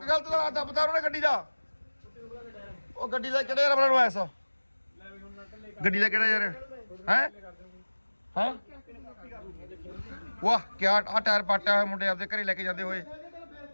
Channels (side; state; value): both; inverted; correlation -1.00